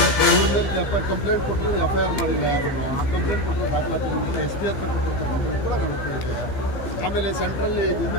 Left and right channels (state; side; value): late; right; 15 ms